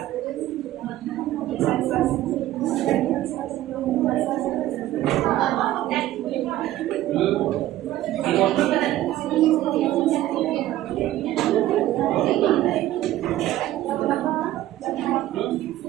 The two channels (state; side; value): quieter; left; 14.5 dB